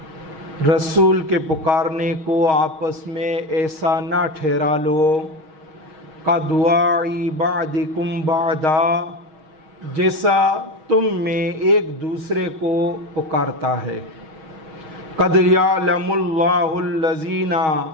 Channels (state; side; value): late; left; 6.4 ms